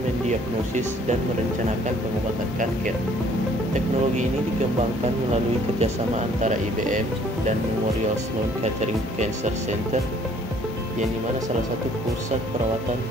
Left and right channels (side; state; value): both; normal; correlation 0.59